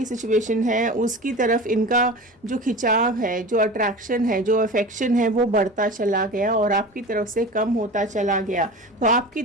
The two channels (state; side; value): normal; both; correlation 0.34